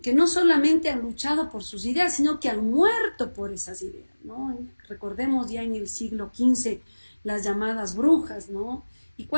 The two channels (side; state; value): both; inverted; correlation -1.00